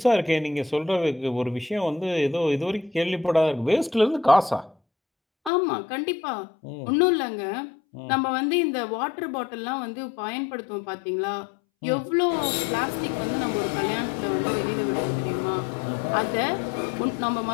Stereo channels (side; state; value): right; drops out; at 5.5 s